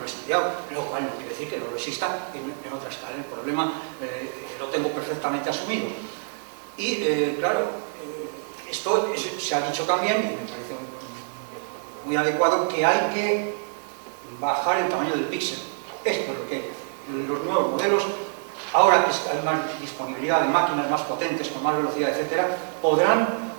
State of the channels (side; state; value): left; silent; digital silence